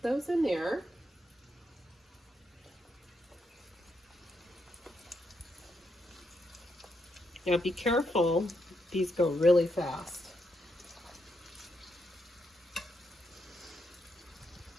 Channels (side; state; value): both; normal; correlation 0.80